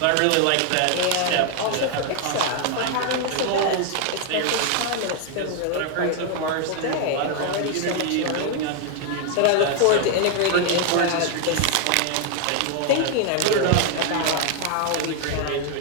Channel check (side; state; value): both; different; correlation 0.00